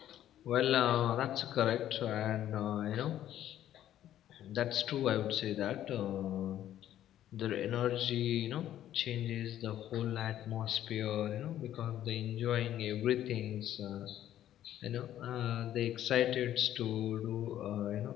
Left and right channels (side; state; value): right; quieter; 11.9 dB